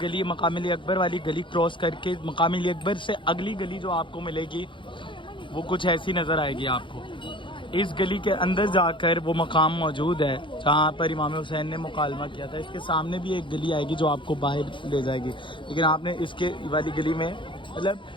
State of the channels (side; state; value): right; late; 0.24 ms